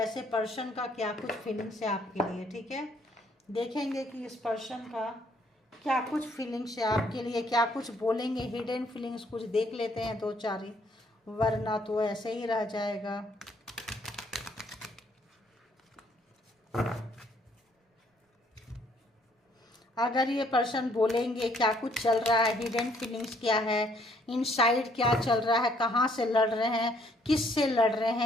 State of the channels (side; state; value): both; normal; correlation 0.66